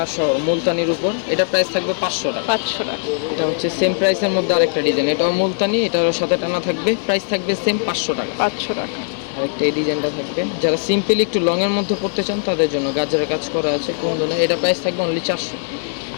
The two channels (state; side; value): silent; right; digital silence